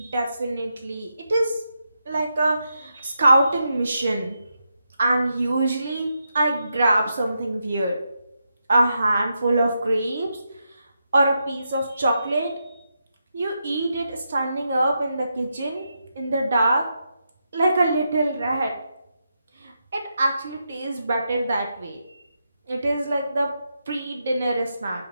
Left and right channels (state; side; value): inverted; both; correlation -0.84